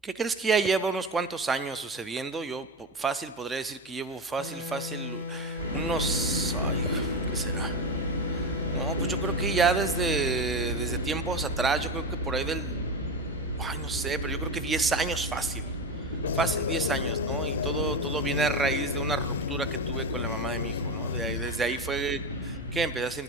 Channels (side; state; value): both; normal; correlation 0.19